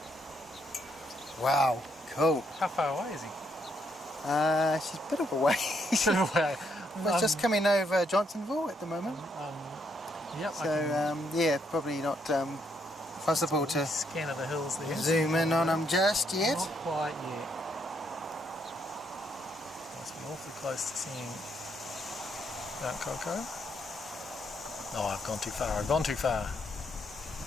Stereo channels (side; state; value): both; normal; correlation 0.74